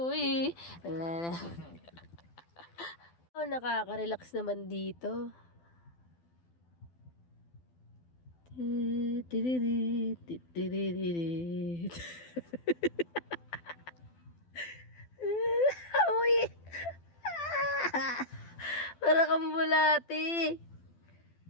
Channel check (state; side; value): late; right; 12 ms